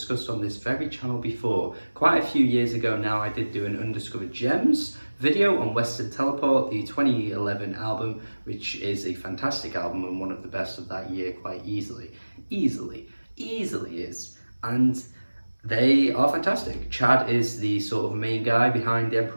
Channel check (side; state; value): both; inverted; correlation -1.00